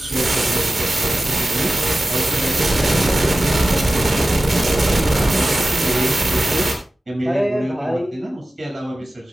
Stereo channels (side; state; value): both; normal; correlation 0.96